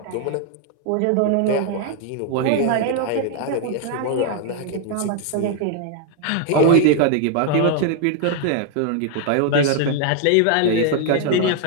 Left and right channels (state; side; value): different; both; correlation 0.00